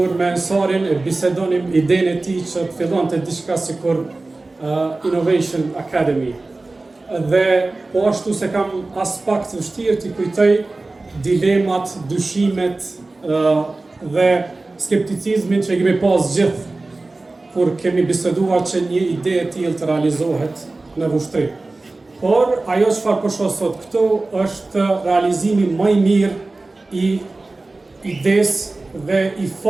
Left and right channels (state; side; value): quieter; left; 3.2 dB